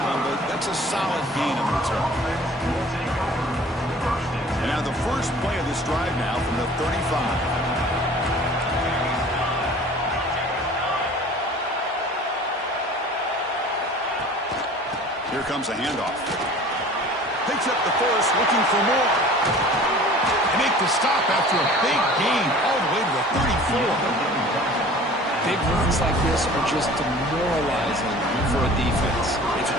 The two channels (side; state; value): both; normal; correlation 0.46